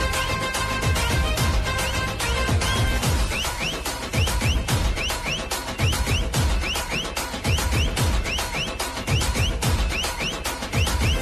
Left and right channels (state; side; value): identical; both; correlation 1.00